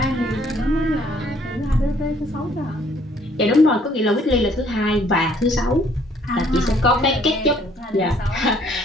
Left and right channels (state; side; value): normal; both; correlation 0.62